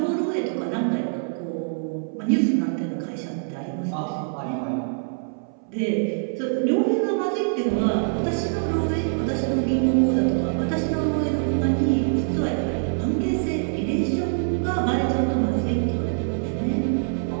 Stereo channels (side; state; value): left; silent; 62 dB below the other